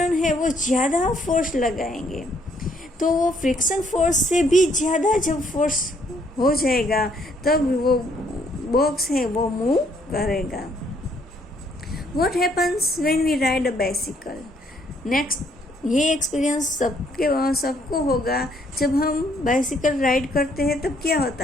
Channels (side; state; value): both; normal; correlation 0.68